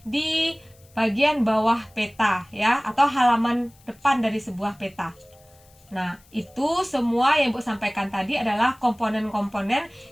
di bagian bawah peta ya, atau halaman depan dari sebuah peta. Nah, itu semua yang Ibu sampaikan tadi adalah komponen-komponen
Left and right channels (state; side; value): noise; left; hiss, 29 dB below the sound